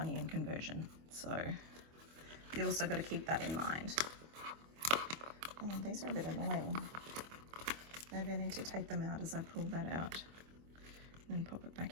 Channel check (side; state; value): left; late; 25 ms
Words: in conversion. So you also got to keep that in mind. Oh, these are a bit annoying. Maybe I need to take them out as I pull that out and then pop it